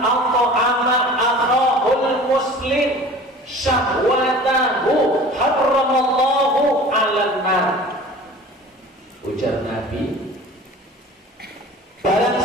akhahul muslim syahwatahu harramallahu 'alan nar. Ujar Nabi, barang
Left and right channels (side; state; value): both; normal; correlation 0.42